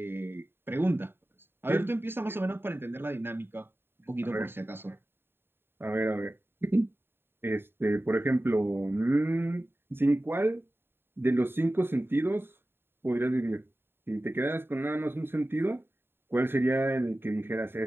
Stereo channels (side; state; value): left; late; 0.11 ms